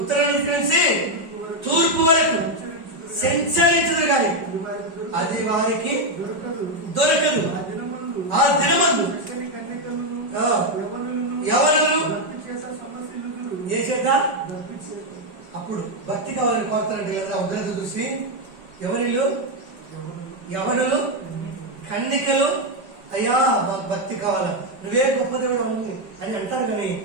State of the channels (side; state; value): left; late; 5.2 ms